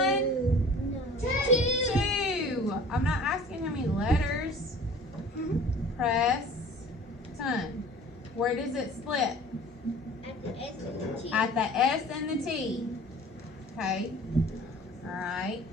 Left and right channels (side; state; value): both; normal; correlation 0.45